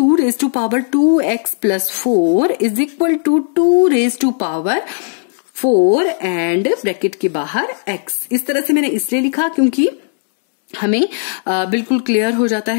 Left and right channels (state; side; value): silent; right; 62 dB below the other